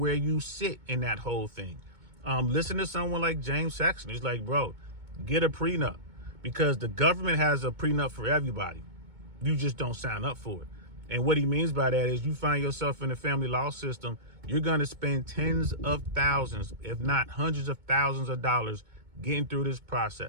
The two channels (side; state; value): left; late; 2.2 ms